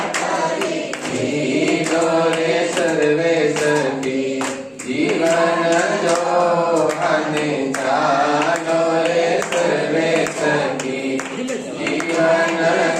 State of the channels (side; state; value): both; identical; correlation 1.00